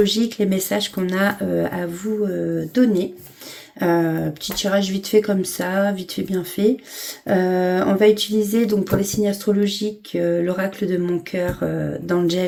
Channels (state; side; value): identical; both; correlation 1.00